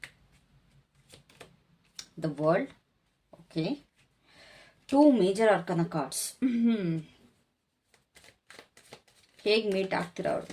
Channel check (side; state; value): both; identical; correlation 1.00